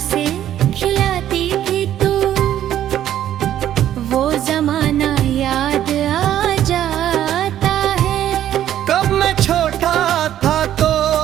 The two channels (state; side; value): quieter; left; 11.5 dB